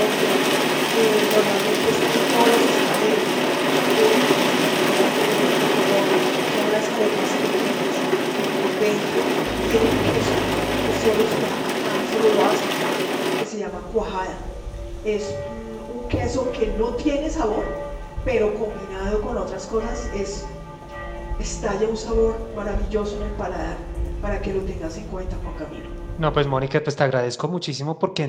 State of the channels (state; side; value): identical; both; correlation 1.00